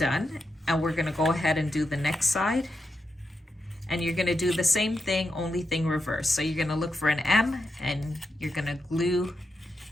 and we're gonna go ahead and do the next side. And you're gonna do the same thing, only thing reverse. So you're gonna look for an M, and you're gonna glue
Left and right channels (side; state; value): both; normal; correlation 0.86